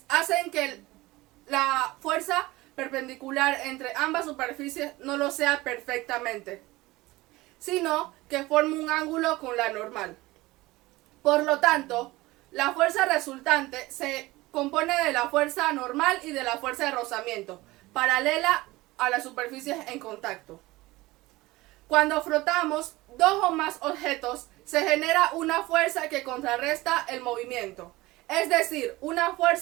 hacen que la fuerza perpendicular entre ambas superficies no lo sea perfectamente, sino que forme un ángulo con la normal. Por lo tanto, la fuerza resultante se compone de la fuerza normal y de la fuerza de rozamiento, paralela a las superficies en contacto. Cuando frotamos dos o más objetos, se genera una fuerza que contrarresta el movimiento. Es decir, una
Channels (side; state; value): left; quieter; 19.8 dB